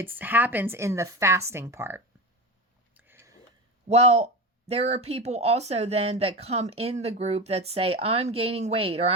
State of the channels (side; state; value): both; normal; correlation 0.23